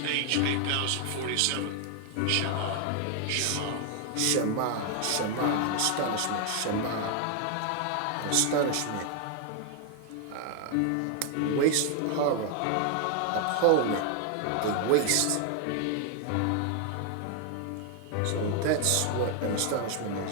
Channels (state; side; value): different; both; correlation 0.00